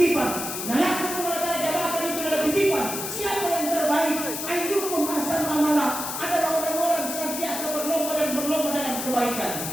Nah, laku mengenai jabatan itu adalah titipan. Siapa yang terbaik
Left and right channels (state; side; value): noise; left; hiss, 5 dB below the sound